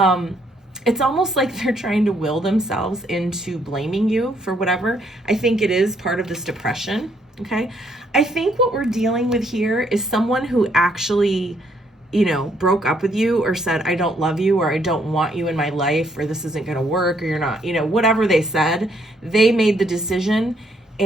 It's almost like they're trying to will themselves into blaming you for whatever. I think it is part of this depression, okay? I think what we're dealing with here is someone who actually, broke up with you or said, I don't love you, or I don't want you in my life, or this isn't going to work, or you're not, whatever they said, they made the decision,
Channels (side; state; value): both; normal; correlation 0.70